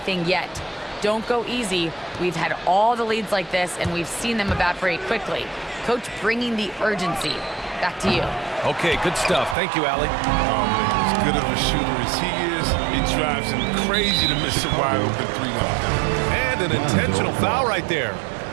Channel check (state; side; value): drops out; left; at 9.6 s